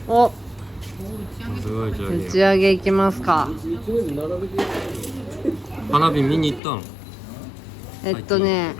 お、すごい上打ち上げ行きますか。一面並べて。花火見に行ったん？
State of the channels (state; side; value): drops out; right; at 6.6 s